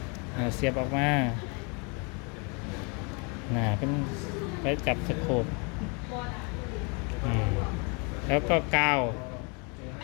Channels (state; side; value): quieter; right; 33.7 dB